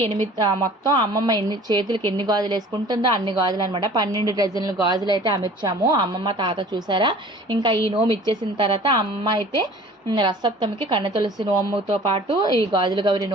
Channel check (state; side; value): normal; both; correlation 0.47